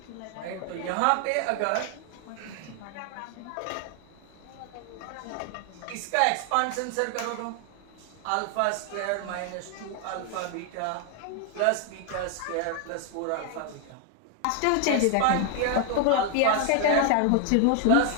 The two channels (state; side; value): different; both; correlation 0.00